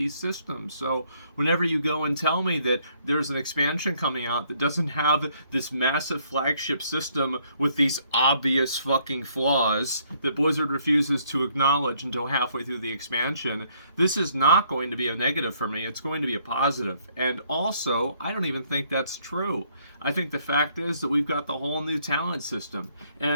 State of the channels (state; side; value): inverted; both; correlation -0.67